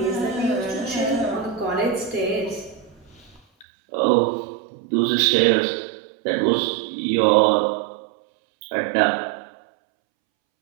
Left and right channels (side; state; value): left; drops out; at 3.7 s